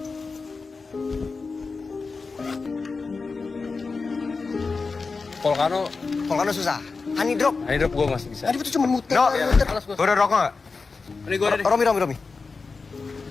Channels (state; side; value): quieter; right; 4.4 dB